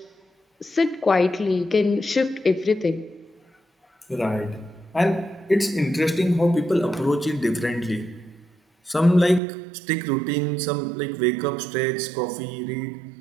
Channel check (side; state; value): left; drops out; at 9.4 s